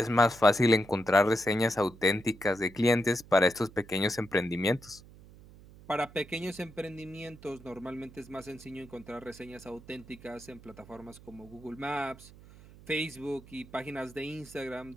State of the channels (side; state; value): right; noise; hum, 21 dB below the sound